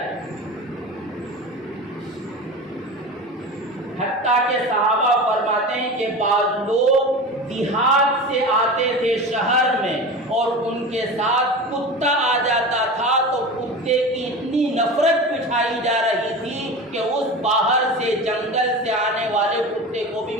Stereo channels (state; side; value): normal; both; correlation 0.30